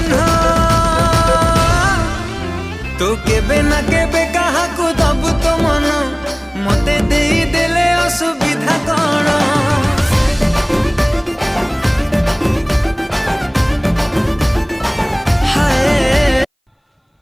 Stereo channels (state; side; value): identical; both; correlation 1.00